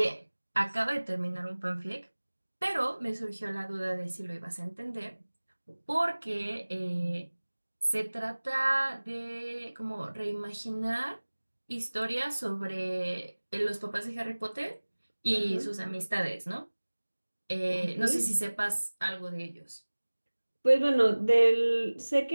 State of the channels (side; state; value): both; inverted; correlation -1.00